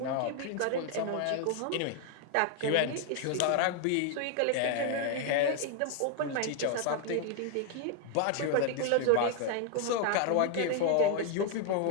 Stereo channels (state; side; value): different; both; correlation 0.00